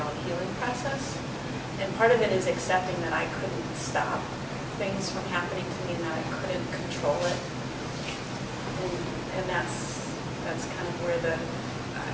healing process. And part of it is accepting that I couldn't stop things from happening to me and that I couldn't control it. And that's kind of where the,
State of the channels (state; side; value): identical; both; correlation 1.00